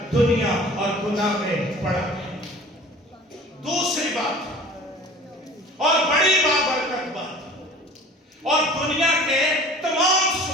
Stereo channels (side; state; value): both; normal; correlation 0.44